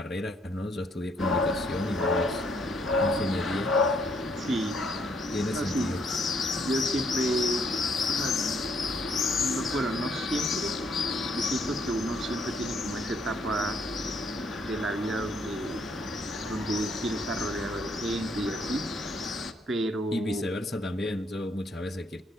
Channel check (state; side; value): normal; both; correlation 0.69